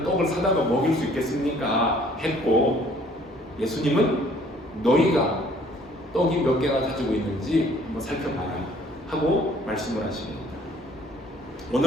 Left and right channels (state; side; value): normal; both; correlation 0.58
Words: 떡을 사다가 먹일 수 있겠습니까? 했고 예수님은 너희가 떡이 몇 개나 가지고 있는지 한번 살펴봐라 하고 말씀을 하십니다.